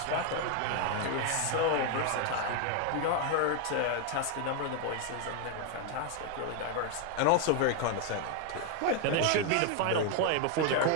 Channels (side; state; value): both; different; correlation 0.01